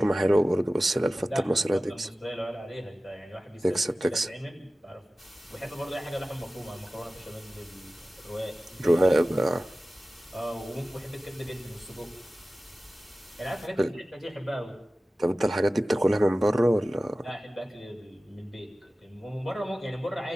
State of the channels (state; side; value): normal; both; correlation 0.96